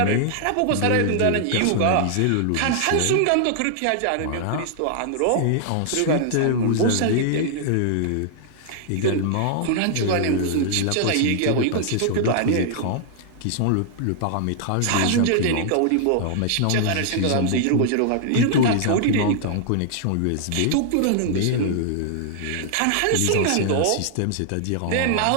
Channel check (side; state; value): both; different; correlation -0.01